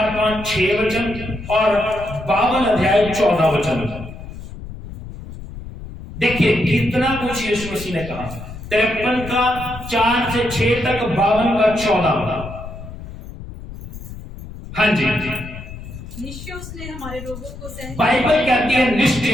5, 6 वचन और 52 अध्याय 14 वचन। देखिए कितना कुछ यीशु मसीह ने कहा। 53 का 4 से 6 तक, 52 का 14। हाँ जी, निश्चय उसने हमारे रोगों को सह, बाइबल कहती है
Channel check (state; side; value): noise; left; rumble, 12 dB below the sound